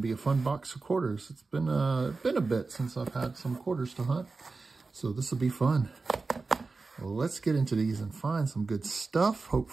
to be a fun box of quarters. It's been a bit since I've had some quarters to hunt. So this will be fun. Well, let's get into these and find some good stuff,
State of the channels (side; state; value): left; quieter; 4.0 dB